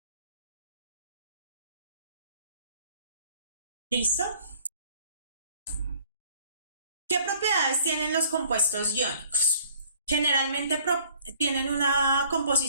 ¿Listo? ¿Qué propiedades tienen los compuestos iónicos? Generalmente tienen una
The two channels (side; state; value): both; inverted; correlation -0.56